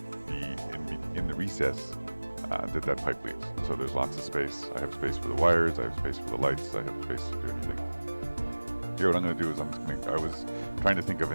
be in the recess that pipe leaves. So there's lots of space. I have space for the wires, I have space for the lights, I have space to do anything. Here, what I'm going to do is I was trying to think of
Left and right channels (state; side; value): inverted; both; correlation -1.00